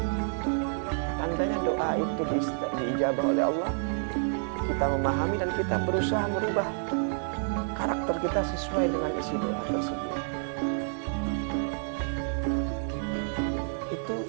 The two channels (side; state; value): left; silent; digital silence